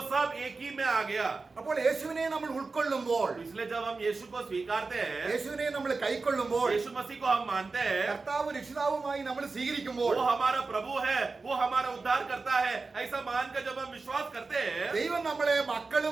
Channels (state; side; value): quieter; left; 4.0 dB